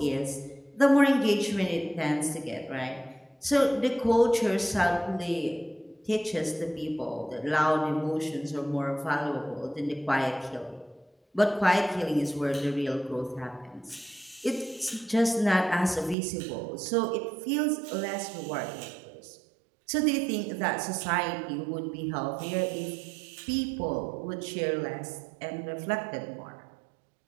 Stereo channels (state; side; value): drops out; left; at 16.2 s